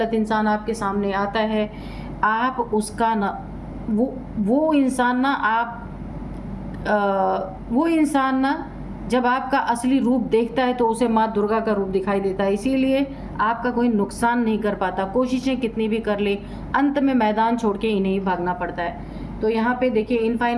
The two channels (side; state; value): both; identical; correlation 1.00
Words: इंसान आपके सामने आता है, आप उसका ना वो इंसान ना जब आपका असली रूप देखता है तो उसे माँ दुर्गा का रूप दिखाई देता है। इसीलिए आपका कोई नुकसान नहीं कर पाता, कोशिशें कितनी भी कर ले, अंत में मैदान छोड़ के इन्हें ही भागना पड़ता है। तो यहाँ पे देखिए